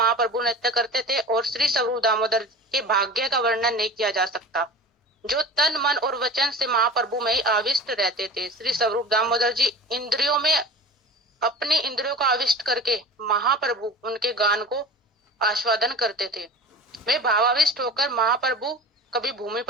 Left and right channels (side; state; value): both; normal; correlation 0.36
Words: नृत्य करते थे और श्री स्वरूप दामोदर के भाग्य का वर्णन नहीं किया जा सकता, जो तन मन और वचन से महाप्रभु में ही आविष्ट रहते थे। श्री स्वरूप दामोदर जी इंद्रियों में अपनी इंद्रियों को आविष्ट करके महाप्रभु उनके गान को आस्वादन करते थे। वे भावाविष्ट होकर महाप्रभु कभी भूमि